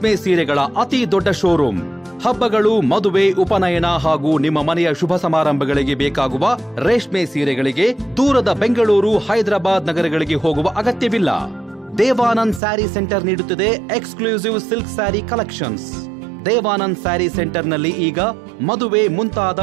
ಸೀರೆಗಳ ಅತಿ ದೊಡ್ಡ ಶೋರೂಮ್. ಹಬ್ಬಗಳು, ಮದುವೆ, ಉಪನಯನ ಹಾಗೂ ನಿಮ್ಮ ಮನೆಯ ಶುಭ ಸಮಾರಂಭಗಳಿಗೆ ಬೇಕಾಗುವ ರೇಷ್ಮೆ ಸೀರೆಗಳಿಗೆ ದೂರದ ಬೆಂಗಳೂರು, ಹೈದರಾಬಾದ್ ನಗರಗಳಿಗೆ ಹೋಗುವ ಅಗತ್ಯವಿಲ್ಲ. ದೇವಾನಂದ್ ಸ್ಯಾರಿ ಸೆಂಟರ್ ನೀಡುತ್ತಿದೆ exclusive silk sari collections. Devanand sari ಸೆಂಟರ್ನಲ್ಲಿ ಈಗ ಮದುವೆ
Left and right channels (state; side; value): drops out; left; at 12.6 s